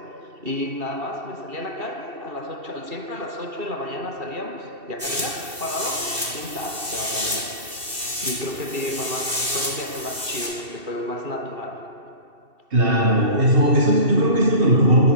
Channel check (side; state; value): left; late; 2.7 ms